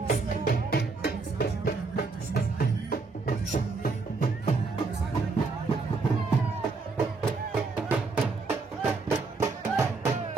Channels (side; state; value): left; quieter; 4.1 dB